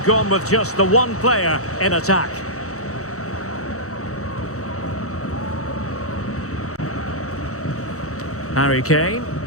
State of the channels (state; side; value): late; right; 0.65 ms